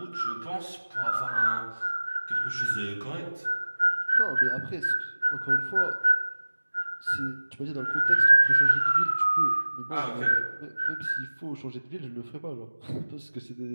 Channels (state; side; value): inverted; both; correlation -1.00